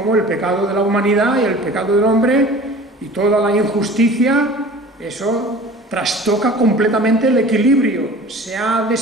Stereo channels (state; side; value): normal; both; correlation 0.42